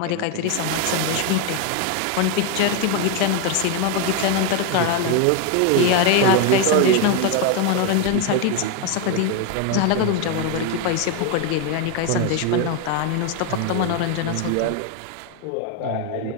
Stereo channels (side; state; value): both; different; correlation 0.02